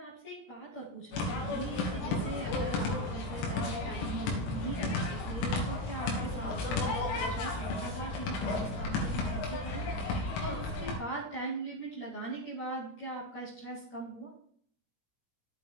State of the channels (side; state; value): right; late; 17 ms